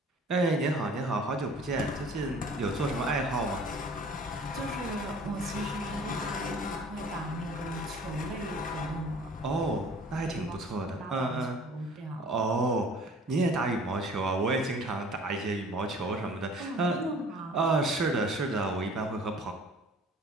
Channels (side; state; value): both; normal; correlation 0.49